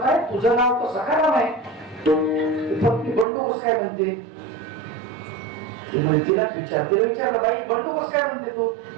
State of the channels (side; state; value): left; drops out; at 3.2 s